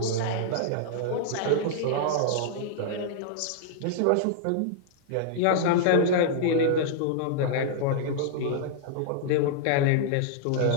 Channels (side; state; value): both; different; correlation -0.01